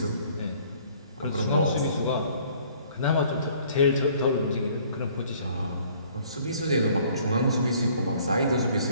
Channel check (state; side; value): inverted; both; correlation -0.58